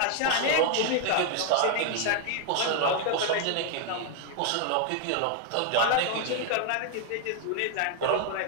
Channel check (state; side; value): different; both; correlation 0.00